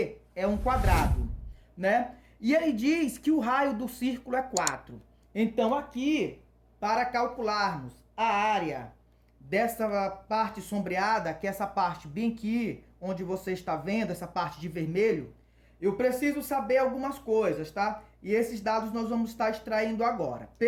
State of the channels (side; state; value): both; identical; correlation 1.00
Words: é um quadrado, né? E ele diz que o raio do círculo é 4. Então aqui, para calcularmos a área dessa parte sombreada, que é essa parte bem aqui, onde você está vendo, essa parte de vermelho, eu preciso saber algumas coisas, tá? E esses dados nós vamos estar extraindo agora.